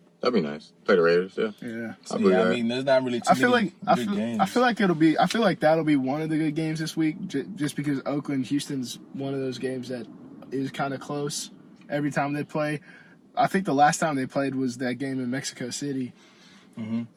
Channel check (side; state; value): both; identical; correlation 1.00